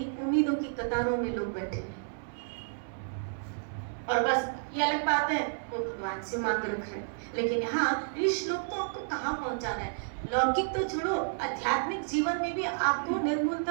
उम्मीदों की कतारों में लोग बैठे हैं। और बस ये अलग बात है, वो भगवान से मांग रखा है, लेकिन यहाँ ये श्लोक तो आपको कहाँ पहुंचा रहा है? लौकिक तो छोड़ो, आध्यात्मिक जीवन में भी आपको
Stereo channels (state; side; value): silent; left; 57 dB below the other